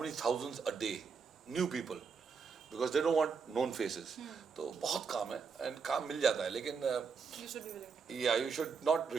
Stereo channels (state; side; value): quieter; left; 5.5 dB